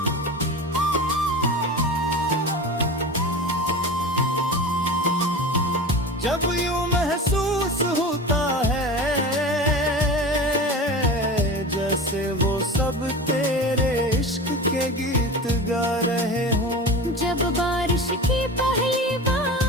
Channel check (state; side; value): normal; both; correlation 0.31